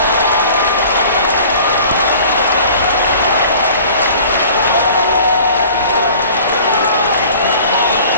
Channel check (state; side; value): inverted; both; correlation -0.46